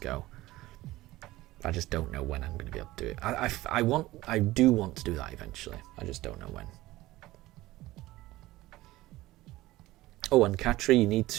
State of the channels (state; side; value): quieter; left; 17.7 dB